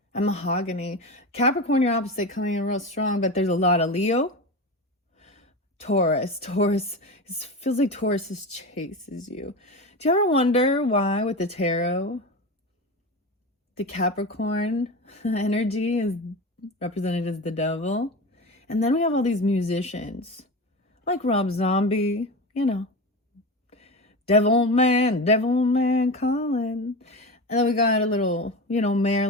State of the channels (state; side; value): normal; both; correlation 0.25